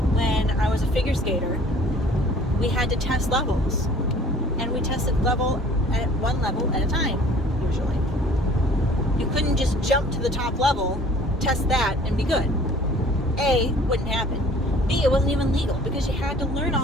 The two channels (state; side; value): normal; both; correlation 0.51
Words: When I was a figure skater, we had to test levels, and we tested one level at a time, usually. You couldn't just jump to the top level, test that, and be good. A, wouldn't happen. B, it wasn't even legal because you had to learn